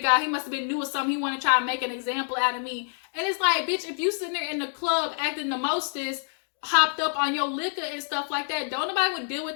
he must have been new or something. He want to try and make an example out of me. And it's like, bitch, if you sitting there in the club acting the mostest, hopped up on your liquor and stuff like that. Don't nobody would deal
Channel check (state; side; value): silent; right; 56 dB below the other